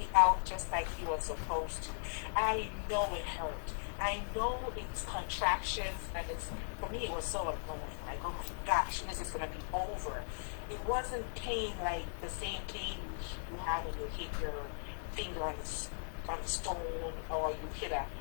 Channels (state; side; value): silent; right; digital silence